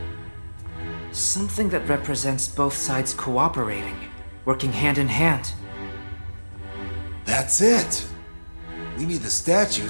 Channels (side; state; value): both; inverted; correlation -1.00